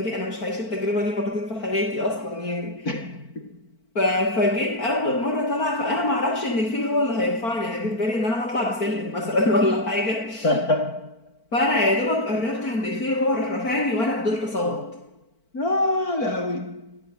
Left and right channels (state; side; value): late; right; 4.5 ms